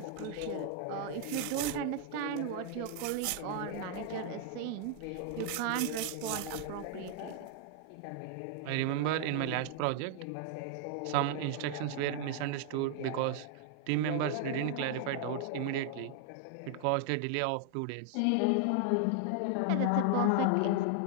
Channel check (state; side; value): different; both; correlation 0.00